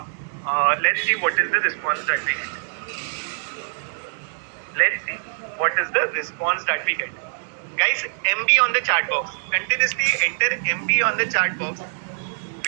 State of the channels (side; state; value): left; silent; digital silence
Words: Let's see what is the response that we get. Let's see what is the response that we get. Guys, MB on the chat box. Continuously enter MB on the chat box